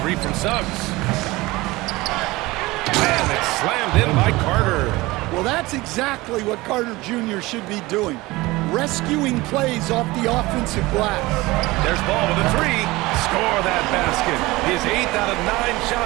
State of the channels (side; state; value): left; quieter; 20.7 dB